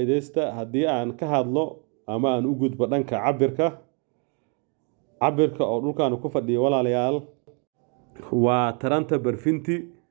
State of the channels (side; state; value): left; quieter; 36.9 dB